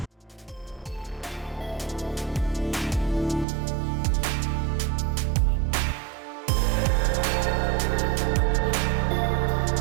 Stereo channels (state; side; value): drops out; left; at 3.5 s